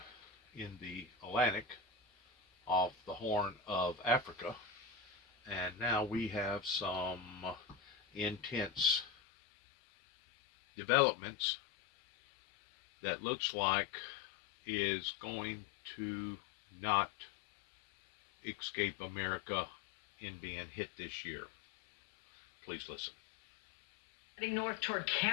in the Atlantic off the Horn of Africa. And now we have some intense developments that looks like is going to not escape America in being hit this year. Please listen. Heading north toward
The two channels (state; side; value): drops out; right; at 9.1 s